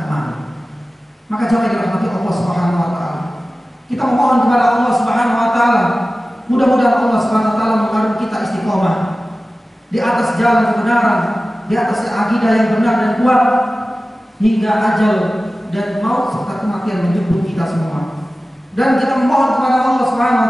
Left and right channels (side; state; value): both; normal; correlation 0.96